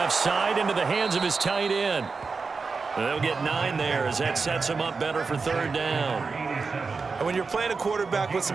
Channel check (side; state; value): left; quieter; 4.6 dB